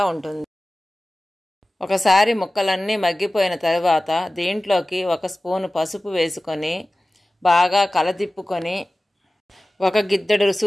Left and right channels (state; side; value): normal; both; correlation 0.97